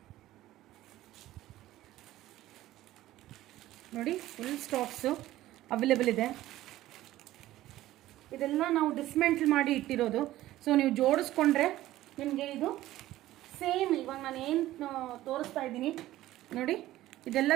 ನೋಡಿ, ಫುಲ್ ಸ್ಟಾಕ್ಸು ಅವೈಲೇಬಲ್ ಇದೆ. ಇದೆಲ್ಲ ನಾವು ಡಿಸ್ಮ್ಯಾಂಟಲ್ ಮಾಡಿ ಇಟ್ಟಿರೋದು. ಸೊ ನೀವು ಜೋಡಿಸ್ಕೊಂಡ್ರೆ ನಿಮಗೆ ಇದು ಸೇಮ್ ಇವಾಗ ನಾನು ಏನು ತೋರಿಸ್ತಾ ಇದ್ದೀನಿ ನೋಡಿ, ಇದೆಲ್ಲ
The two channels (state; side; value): quieter; left; 15.2 dB